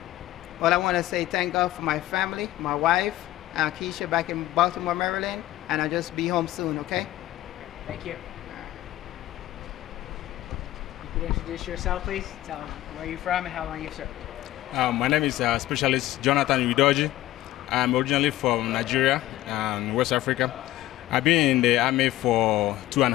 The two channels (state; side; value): quieter; right; 15.2 dB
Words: Well, I want to say thank God for my family, my wife, Keisha back in Baltimore, Maryland, and I'll just be home soon, okay? Thank you. You could introduce yourself, please. Tell them where you're from and how long you've served. My name is Specialist Jonathan Udoji. I'm originally from Nigeria, West Africa. I've been in the Army for